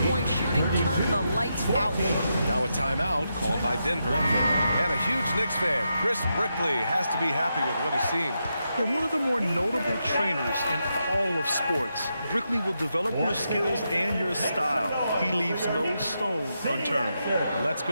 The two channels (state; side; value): inverted; both; correlation -0.85